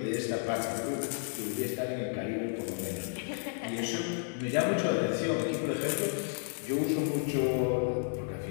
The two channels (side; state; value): right; silent; 56 dB below the other